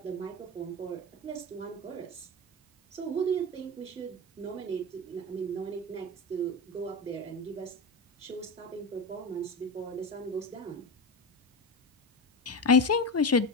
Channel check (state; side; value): normal; both; correlation 0.21